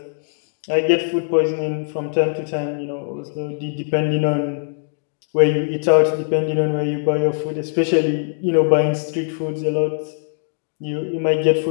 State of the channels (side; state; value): right; silent; digital silence